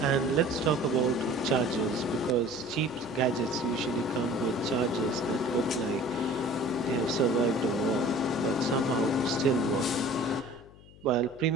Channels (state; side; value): noise; left; hum, 22 dB below the sound